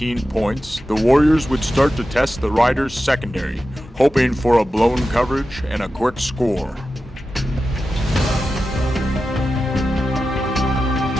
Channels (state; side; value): normal; both; correlation 0.92